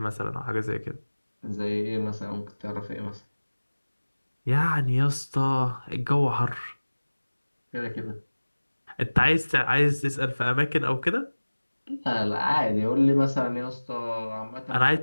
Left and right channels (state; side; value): inverted; both; correlation -1.00